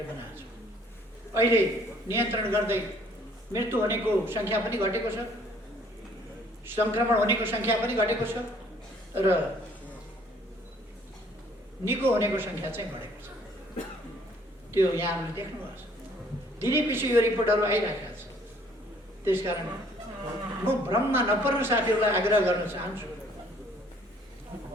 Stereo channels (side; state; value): both; normal; correlation 0.60